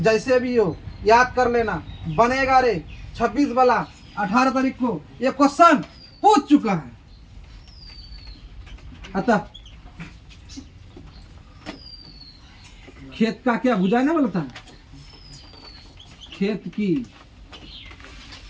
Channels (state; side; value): identical; both; correlation 1.00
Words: भी हो याद कर लेना, बनेगा रे। 26 वाला 18 तारीख को ये क्वेश्चन पूछ चुका है। अतः खेत का क्या भुजाएं ना बोलता है? खेत की